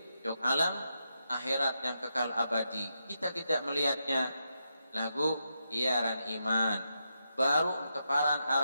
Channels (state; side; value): inverted; both; correlation -0.84